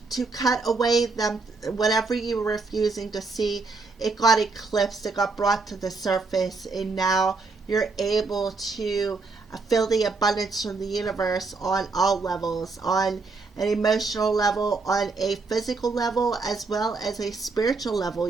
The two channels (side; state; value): left; quieter; 4.0 dB